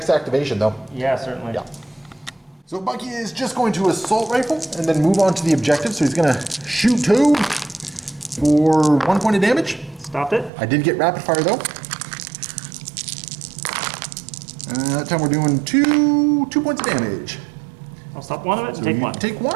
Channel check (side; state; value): left; drops out; at 10.5 s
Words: activation though. Yeah, certainly. Yeah. So Bucky is just going to assault rifle and then move on to the objective. So he's going to shoot Toad for 1 point of damage. Stopped it. I did get rapid fire though. That time we're doing 2 points of damage. I'll stop one of it and So take you 1. Take